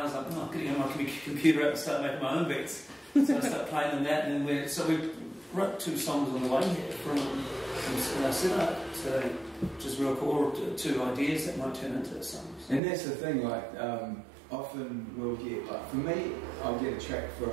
I was like, oh, I'm getting my computer out and start making my own beats. So I start playing them that, and then we wrote 2 songs on the way here from Sinai, so which is real cool, or 2 ideas that might turn into songs. And that's the thing, like, often we'll get, like, for me, I'll get a track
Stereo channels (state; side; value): drops out; left; at 12.8 s